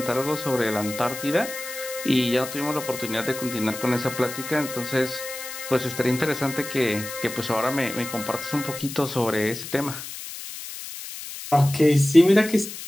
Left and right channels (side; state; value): left; noise; hiss, 10 dB below the sound